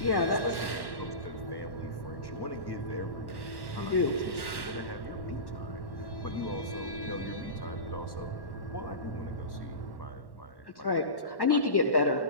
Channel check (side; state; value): right; late; 1.1 ms